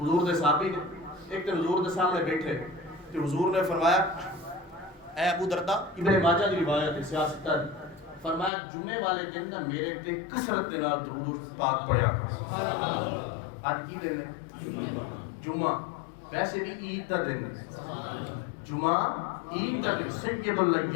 دے صحابی نے ایک دن حضور دے سامنے بیٹھے کہ حضور نے فرمایا اے ابو دردہ، ابن ماجہ دی روایت ہے سیاست فرمایا جمعے والے دن نہ میرے تے کثرت دے نال درود و پاک پڑھیا کرو۔ آج کی دن ہے؟ جمعہ، ویسے بھی عید دا دن ہے، جمعہ عید دا دن، سید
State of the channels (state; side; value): drops out; right; at 8.5 s